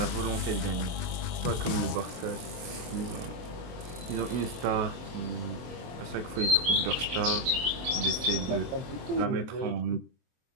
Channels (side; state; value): left; late; 23 ms